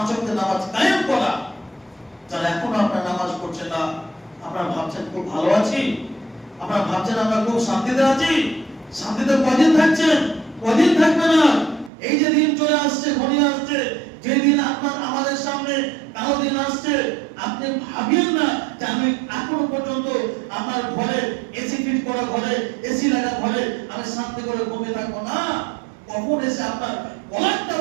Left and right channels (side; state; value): left; drops out; at 11.9 s